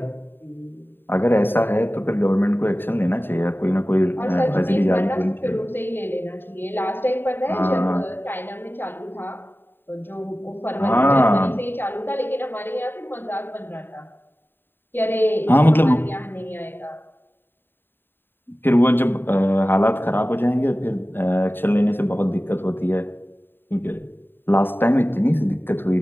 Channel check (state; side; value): late; right; 0.096 ms